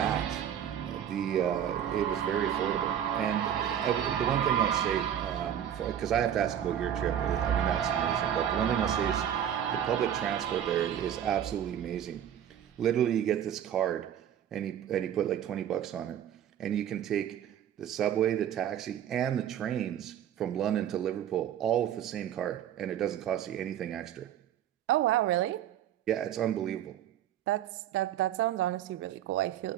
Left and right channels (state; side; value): quieter; left; 10.0 dB